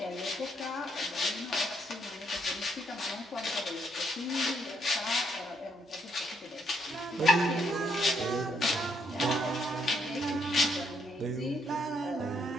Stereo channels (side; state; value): both; normal; correlation 0.73